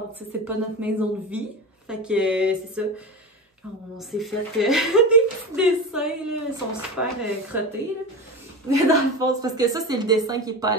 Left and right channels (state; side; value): normal; both; correlation 0.24